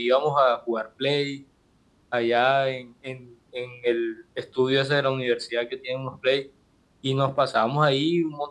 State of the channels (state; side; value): identical; both; correlation 1.00